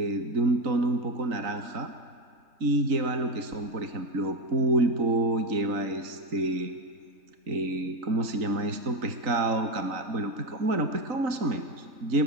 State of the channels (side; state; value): left; late; 3.9 ms